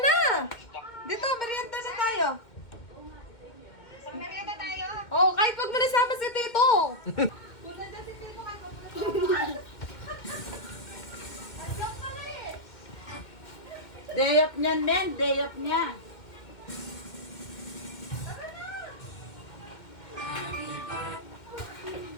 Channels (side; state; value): right; late; 2.1 ms